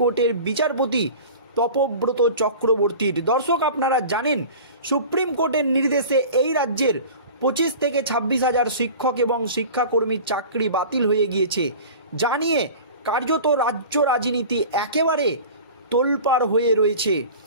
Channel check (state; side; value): inverted; both; correlation -0.38